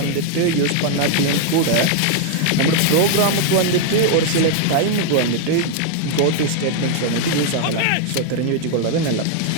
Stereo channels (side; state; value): both; different; correlation 0.00